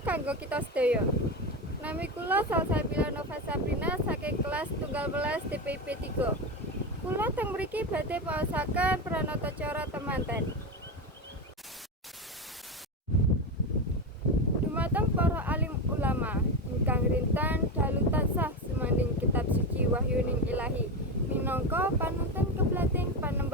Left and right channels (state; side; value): normal; both; correlation 0.17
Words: kanggo kita sedaya. Nami kula Salsabila Nova Sabrina saking kelas tunggal welas DPP 3. Kula teng mriki badhe maosaken pranata cara temanten. Dumateng para alim ulama ingkang rintan dalu tansah sumanding kitab suci wahyuning ilahi. Minangka panuntun keblating